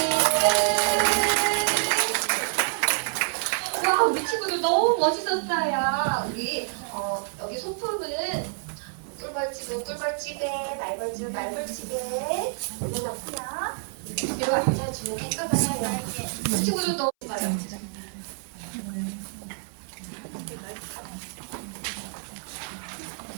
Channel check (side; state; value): left; silent; 60 dB below the other